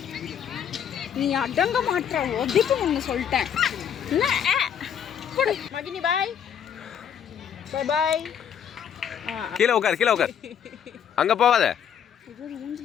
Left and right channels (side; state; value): right; quieter; 8.5 dB